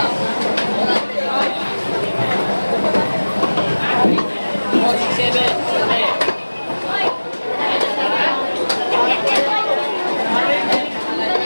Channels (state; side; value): inverted; both; correlation -1.00